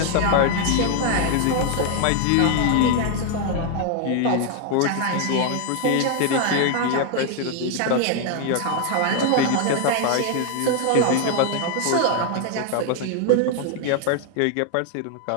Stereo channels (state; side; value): different; both; correlation 0.00